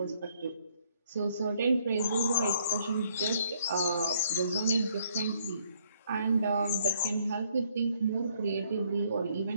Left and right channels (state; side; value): inverted; both; correlation -0.68